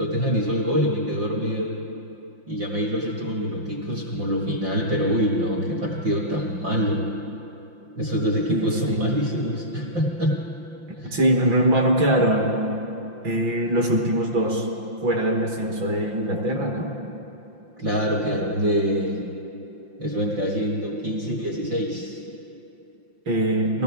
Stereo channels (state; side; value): late; left; 5.8 ms